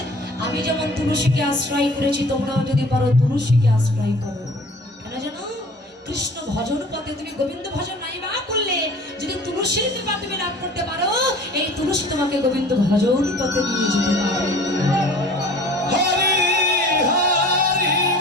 আমি যেমন তুলসীকে আশ্রয় করেছি তোমরাও যদি পারো তুলসীকে আশ্রয় করো। কেন জানো? কৃষ্ণ ভজন পথে তুমি গোবিন্দ ভজন নাই বা করলে যদি তুলসীর কৃপা তুমি লাভ করতে পারো, এই তুলসী তোমাকে গোবিন্দ ভজন পথে নিয়ে যেতে পারে।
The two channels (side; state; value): both; normal; correlation 0.46